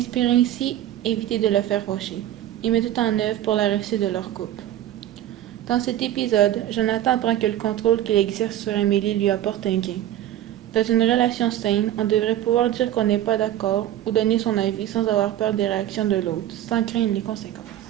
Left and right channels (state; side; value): quieter; left; 12.6 dB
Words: ainsi éviter de le faire fâcher et met tout en œuvre pour la réussite de leur couple. Dans cet épisode, Jonathan apprend que le contrôle qu'il exerce sur Amélie lui apporte un gain. Dans une relation saine, on devrait pouvoir dire qu'on n'est pas d'accord ou donner son avis sans avoir peur des réactions de l'autre, sans craindre les conséquences.